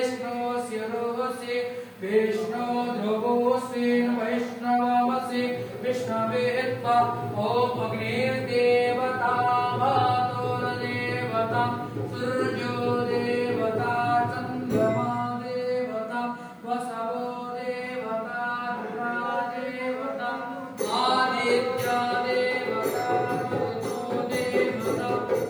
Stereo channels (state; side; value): identical; both; correlation 1.00